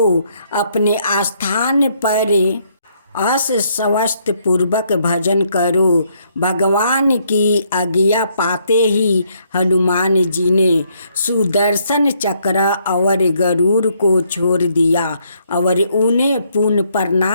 अपने स्थान पर अस स्वस्थ पूर्वक भजन करो। भगवान की आज्ञा पाते ही हनुमान जी ने सुदर्शन चक्र और गरुड़ को छोड़ दिया और उन्हें पुनः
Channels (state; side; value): inverted; both; correlation -0.71